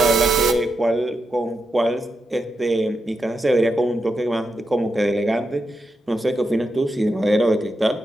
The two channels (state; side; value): normal; both; correlation 0.86